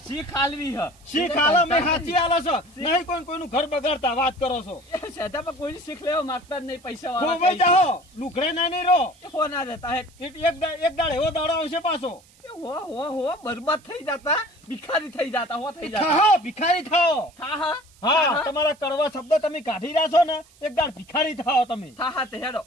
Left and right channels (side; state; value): right; noise; hiss, 28 dB below the sound